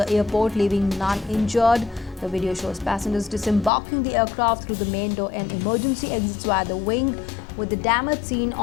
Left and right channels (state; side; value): drops out; right; at 3.7 s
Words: airport, leaving none injured. The video shows passengers disembarking the aircraft through the main door and emergency exits via the wing, with the damage seen